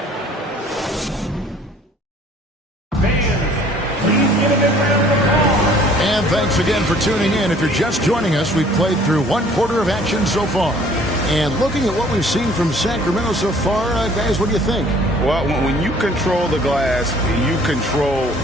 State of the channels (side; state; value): both; normal; correlation 0.55